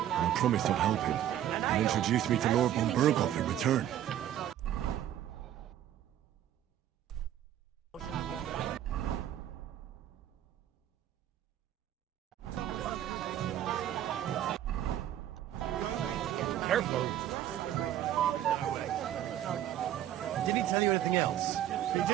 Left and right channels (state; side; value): quieter; left; 11.5 dB